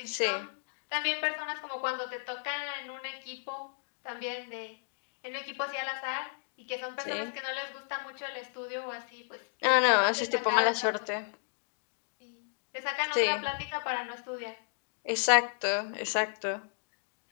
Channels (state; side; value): silent; right; digital silence